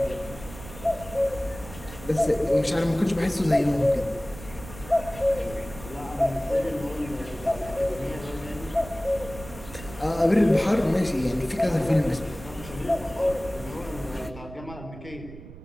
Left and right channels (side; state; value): right; noise; rumble, 15 dB below the sound